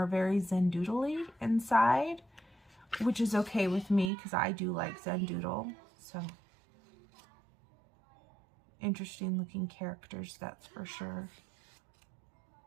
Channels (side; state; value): left; drops out; at 4.1 s